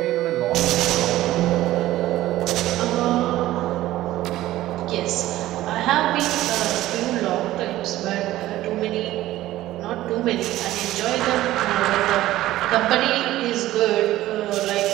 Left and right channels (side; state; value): left; quieter; 15.3 dB